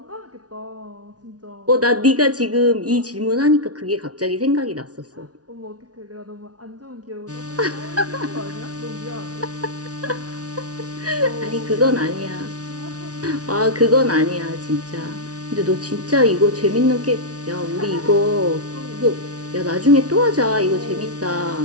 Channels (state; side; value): late; left; 0.68 ms